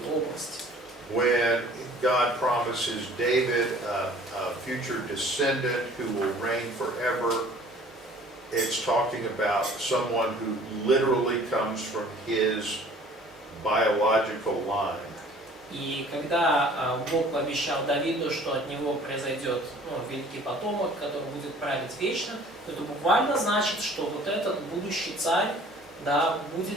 или области. When God promises David a future descendant who will reign forever, it's talking about someone who literally comes from his biological line. И когда Бог пообещал Давиду, что от него произойдет, ну, великий потомок, который будет править вечно, то это буквально значит, что вот этот будущий царь, да,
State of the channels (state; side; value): normal; both; correlation 0.51